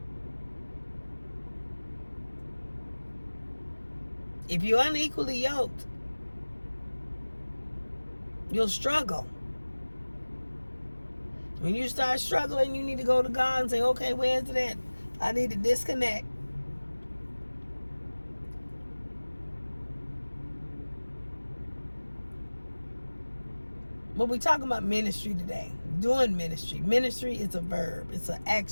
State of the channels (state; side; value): inverted; both; correlation -1.00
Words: If you're unequally yoked, you'll struggle. When you start struggling, you need to go to God and say, okay, where's it at? I need to disconnect. But we're talking about ministry today. Doing ministry. Ministry is a verb. It's an